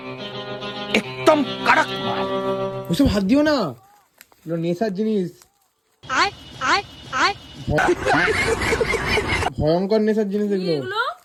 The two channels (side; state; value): both; identical; correlation 1.00